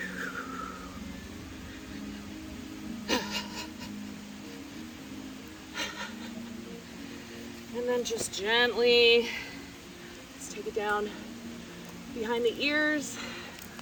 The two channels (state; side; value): identical; both; correlation 1.00